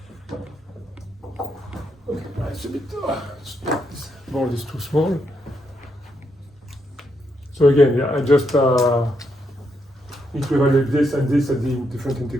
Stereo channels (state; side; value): normal; both; correlation 0.79